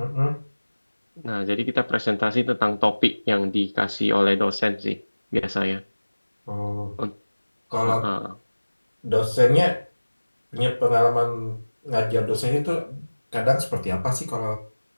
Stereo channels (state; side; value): inverted; both; correlation -1.00